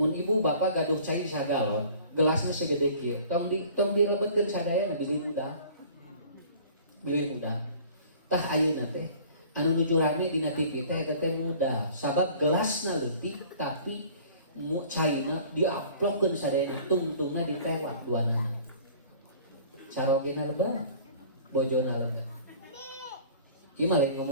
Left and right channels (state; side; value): inverted; both; correlation -0.48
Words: ibu bapak gaduh cai sagalon, gelasnya segede kieu, tong dilebetkeun sadayana bilih mudah. Tah ayeuna teh anu nuju rame dina TV teh eta teh mudah, sabab gelasna leutik tapi caina diaplokkeun sadayana, tungtungna ditewak duanana. Sarogena lebar, bojona lebar. Ieu mah lain